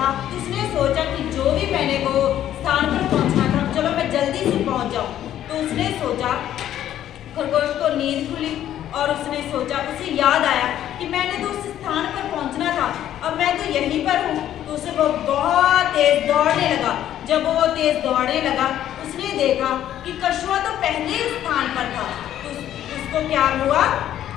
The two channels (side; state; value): right; quieter; 11.6 dB